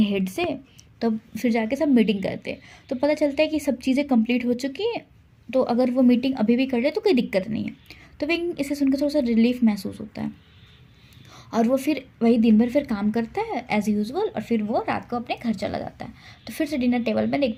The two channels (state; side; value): identical; both; correlation 1.00